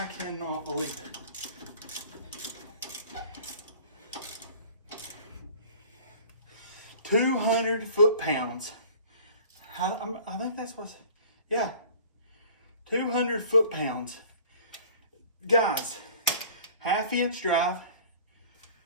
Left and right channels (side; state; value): both; inverted; correlation -0.47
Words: cannot believe it. $200 foot-pounds. I think that's what's, yeah. 200 foot-pounds. Guys, 1/2 inch drive.